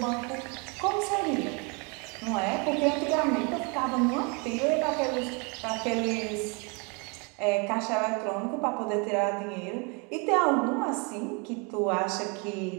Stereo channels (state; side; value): quieter; left; 32.3 dB